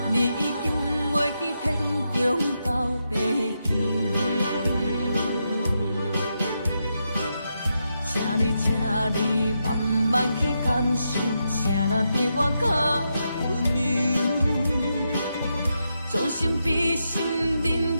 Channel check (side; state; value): both; inverted; correlation -0.84